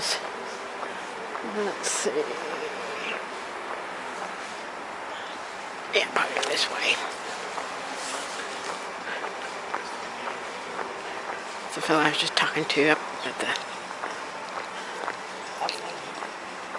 Let's see. Yeah, probably this way. It's the fella I was just talking to up at the...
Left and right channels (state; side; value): identical; both; correlation 1.00